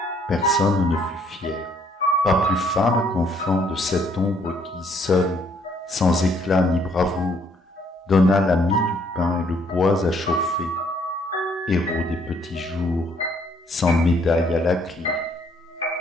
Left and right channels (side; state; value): both; normal; correlation 0.66